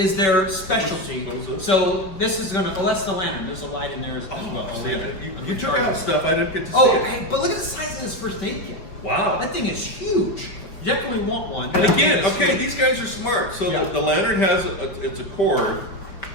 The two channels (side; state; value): right; late; 5.3 ms